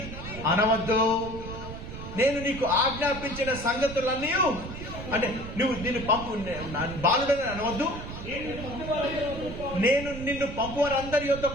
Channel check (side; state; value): right; noise; rumble, 10 dB below the sound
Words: అనవద్దు, నేను నీకు ఆజ్ఞాపించిన సంగతులన్నీ, అంటే నువ్వు నిన్ను పంపు బాలుడని అనవద్దు, నేను నిన్ను పంపువారు అందరి